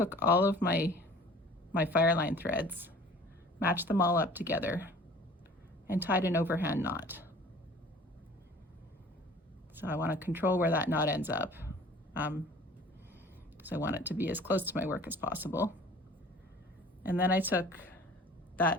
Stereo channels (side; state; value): both; normal; correlation 0.47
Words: all of my Fireline threads, matched them all up together, and tied an overhand knot. So I want to control where that knot ends up, because I want it to be as close to my work as possible. And then I took